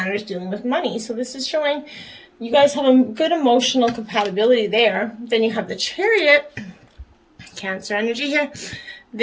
dealing with money. So this is showing you guys have a good emotional compatibility there. Then you have the Chariot, Cancer energy here.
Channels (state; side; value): identical; both; correlation 1.00